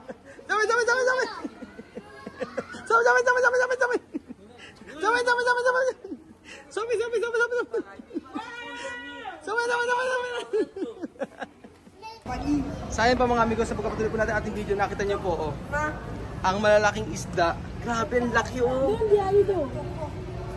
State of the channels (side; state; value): both; identical; correlation 1.00